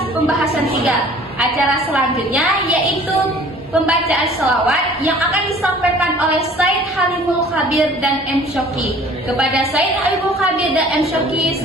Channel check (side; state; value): both; normal; correlation 0.50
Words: pembahasan 3. Acara selanjutnya yaitu pembacaan selawat yang akan disampaikan oleh Said Halimul Khabir dan M. Syoki. Kepada Said Halimul Khabir dan M. Syoki,